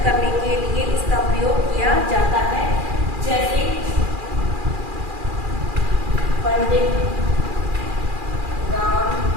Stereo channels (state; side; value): late; left; 2.4 ms